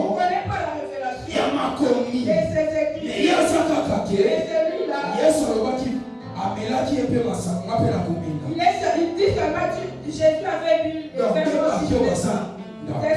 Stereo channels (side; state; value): both; identical; correlation 1.00